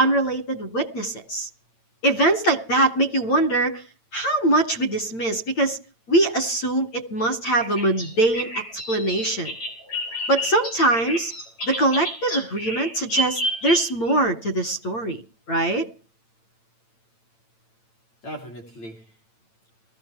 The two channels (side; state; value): right; late; 8.9 ms